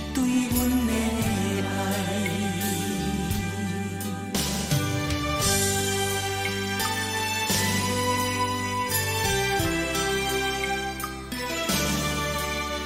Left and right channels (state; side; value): identical; both; correlation 1.00